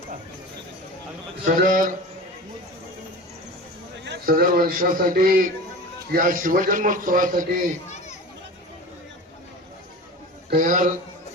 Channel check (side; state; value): both; normal; correlation 0.33